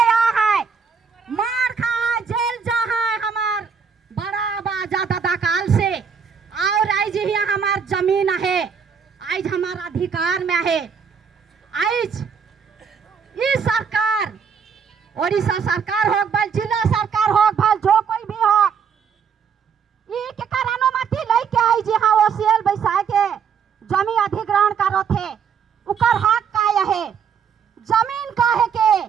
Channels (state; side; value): quieter; left; 6.6 dB